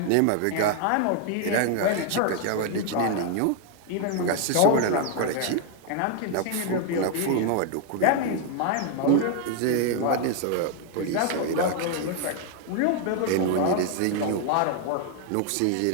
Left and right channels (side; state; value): both; different; correlation 0.00